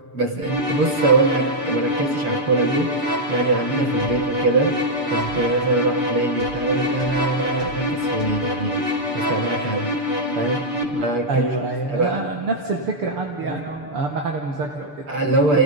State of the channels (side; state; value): left; late; 6.9 ms